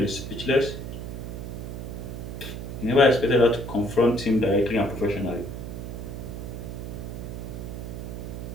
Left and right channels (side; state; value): right; noise; hum, 7 dB below the sound